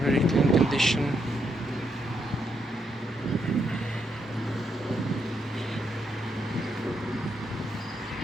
Very clean condition.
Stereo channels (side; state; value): both; normal; correlation 0.79